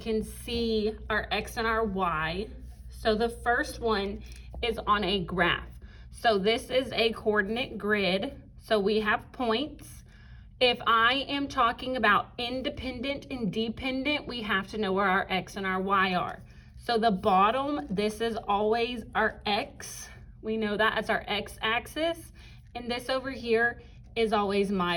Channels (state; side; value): identical; both; correlation 1.00